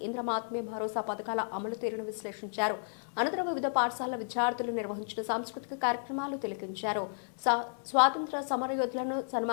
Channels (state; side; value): silent; right; digital silence